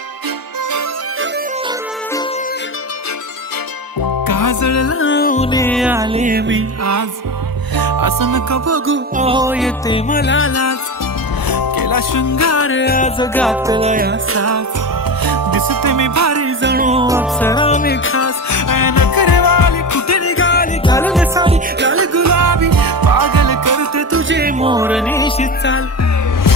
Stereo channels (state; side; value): normal; both; correlation 0.23